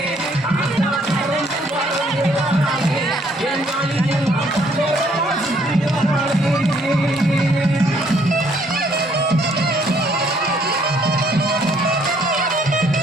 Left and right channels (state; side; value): normal; both; correlation 0.65